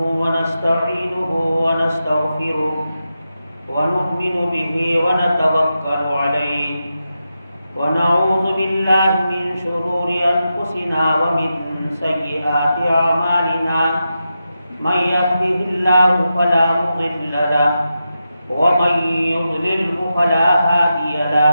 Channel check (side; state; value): both; inverted; correlation -0.89